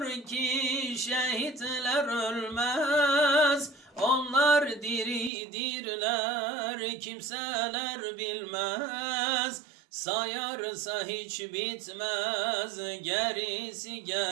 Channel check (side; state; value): left; drops out; at 5.3 s